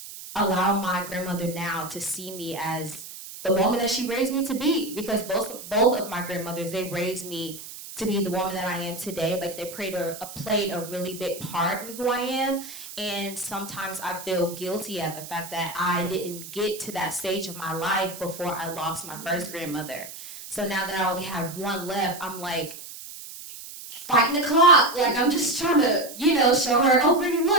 allow my grandmother now to see me as the woman that she raised me to be, because both of my grandmothers, they raised me to be the woman that I am today. Like, they played a really big part in who I am. And sometimes I feel guilty at the fact that I didn't get to that stage of my life before I lost my first grandmother. So now that I only have one left, I'm like fighting the clock. Like, I'm just trying to, show her, oh, Brittany,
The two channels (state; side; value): noise; right; hiss, 13 dB below the sound